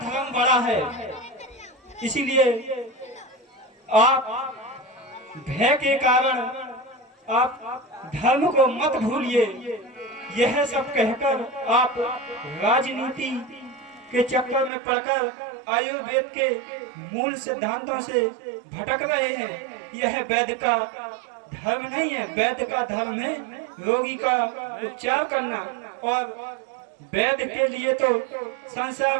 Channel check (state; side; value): drops out; left; at 14.7 s